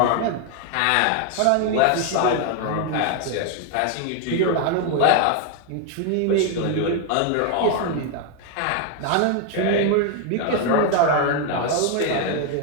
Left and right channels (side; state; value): both; different; correlation 0.01